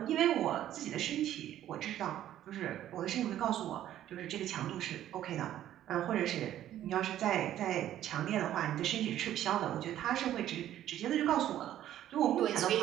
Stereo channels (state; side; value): quieter; left; 12.1 dB